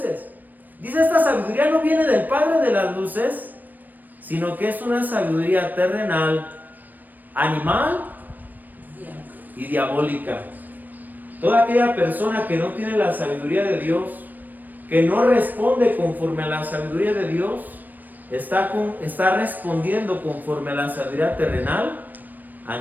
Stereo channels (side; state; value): left; late; 0.088 ms